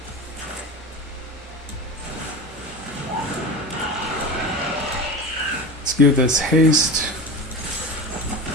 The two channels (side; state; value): both; normal; correlation 0.29